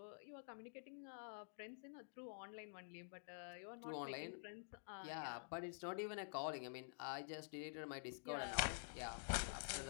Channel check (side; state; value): right; silent; digital silence